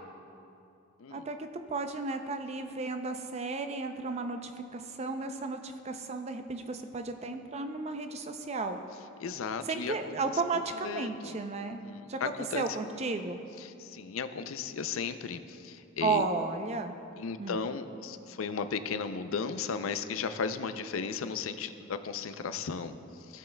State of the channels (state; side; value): normal; both; correlation 0.10